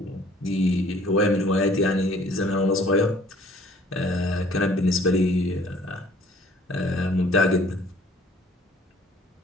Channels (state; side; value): normal; both; correlation 0.56